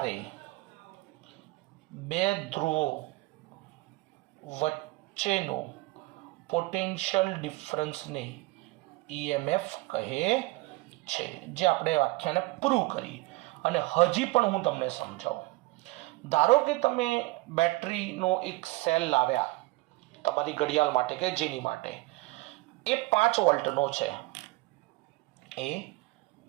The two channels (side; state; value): left; quieter; 22.1 dB